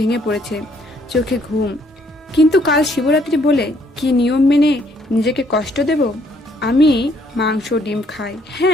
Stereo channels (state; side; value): normal; both; correlation 0.67